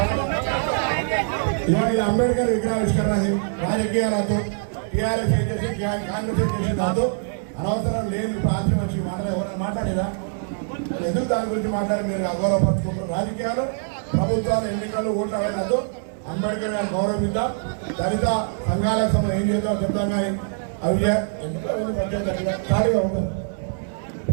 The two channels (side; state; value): left; silent; digital silence